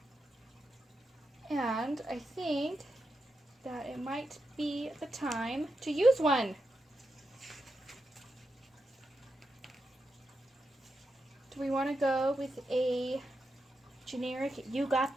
and I think that it might be the time to use one. Do we want to go with a generic "you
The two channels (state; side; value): normal; both; correlation 0.86